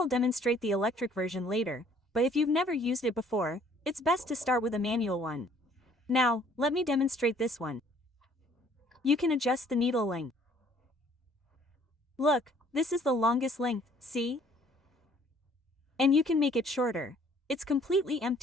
demonstrate the electric version later, but if you've never used it before, it's best to start with a manual one. Now, let me demonstrate this one. You can adjust the needle length. Look, this is the longest length, see? And you can make it shorter. It's completely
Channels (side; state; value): both; normal; correlation 0.59